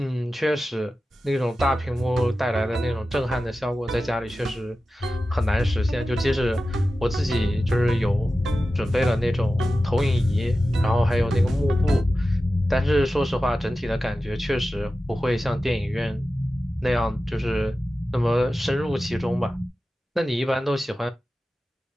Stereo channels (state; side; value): normal; both; correlation 0.94